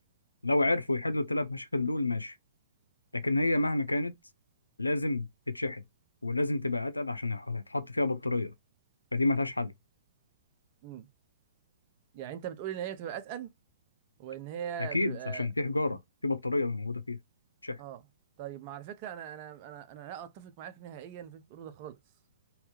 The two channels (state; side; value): inverted; both; correlation -0.88